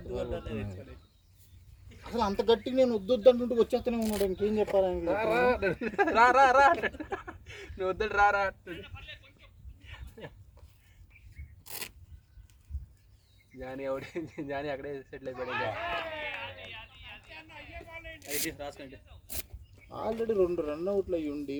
అసలు అంత గట్టిగా నేను వద్దు అంటుంటే వచ్చేస్తూనే ఉన్నాడు. ఇంకేం చెప్పాలని రా నువ్వు వద్దు రా. జానీ అక్కడే సెటిల్ అయిపోయాడు. ఆల్రెడీ 2 రన్అట్లు అయ్యి ఉండి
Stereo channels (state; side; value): identical; both; correlation 1.00